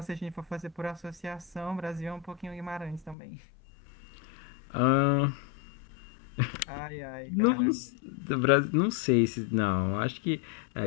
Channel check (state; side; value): drops out; right; at 3.2 s